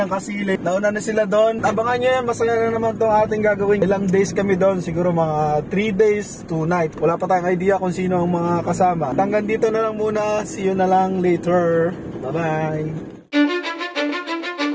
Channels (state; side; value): identical; both; correlation 1.00